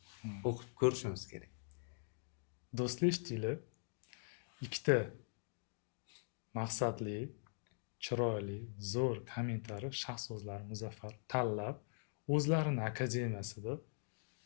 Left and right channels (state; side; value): silent; right; digital silence